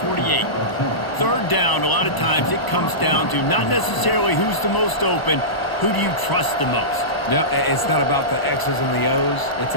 3rd down, a lot of times it comes down to not necessarily who's the most open, who do you trust the most? No, it's not about the X's and the O's. It's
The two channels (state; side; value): late; right; 1.0 ms